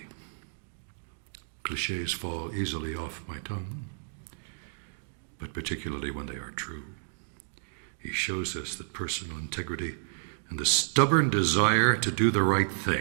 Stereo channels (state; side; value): silent; left; digital silence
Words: Clichés fall easily off my tongue, but particularly when they are true. He shows us that personal integrity and the stubborn desire to do the right